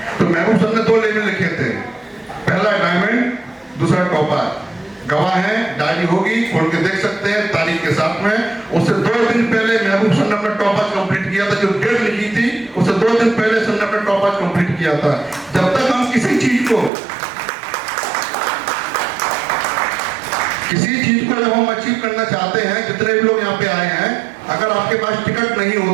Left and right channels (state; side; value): drops out; left; at 16.9 s